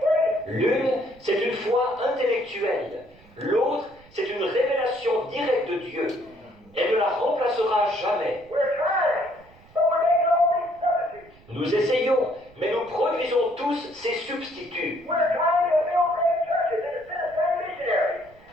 L'une, c'est une foi intellectuelle. L'autre, c'est une révélation directe de Dieu. Elle ne la remplacera jamais. We're trying, but we're making all these substitutes. Nous essayons, mais nous produisons tous ces substituts. We're trying to build great churches instead of sending missionaries.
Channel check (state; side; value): noise; right; rumble, 26 dB below the sound